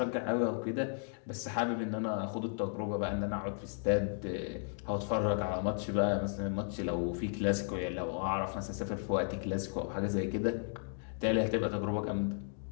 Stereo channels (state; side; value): silent; right; 55 dB below the other